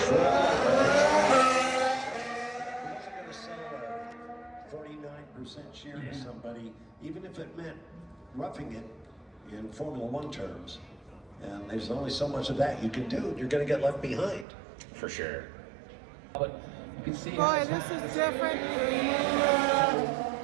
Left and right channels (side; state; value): left; drops out; at 14.5 s